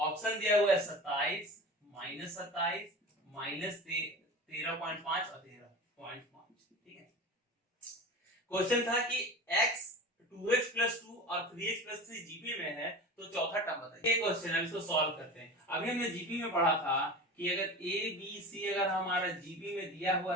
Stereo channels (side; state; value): both; normal; correlation 0.33